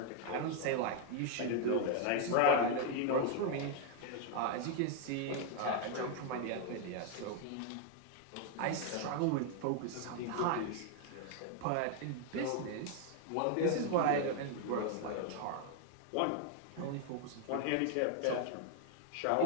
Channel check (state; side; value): different; both; correlation 0.00